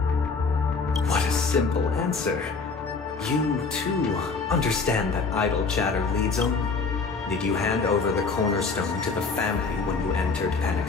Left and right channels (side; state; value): right; quieter; 4.5 dB